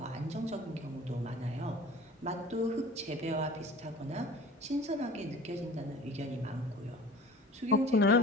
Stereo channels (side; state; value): both; normal; correlation 0.43